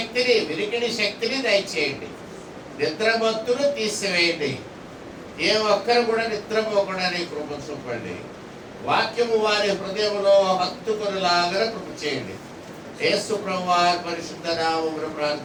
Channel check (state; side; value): identical; both; correlation 1.00